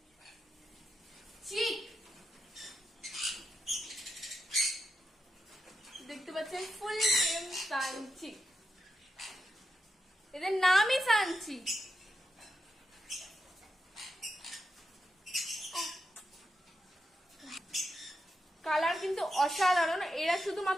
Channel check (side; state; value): both; normal; correlation 0.86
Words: দেখতে পাচ্ছেন ফুল নেম সানচি, এদের নামই সানচি। কালার কিন্তু অসাধারণ। এরা